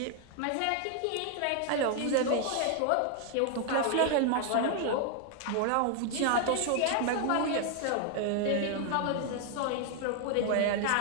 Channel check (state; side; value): different; both; correlation 0.00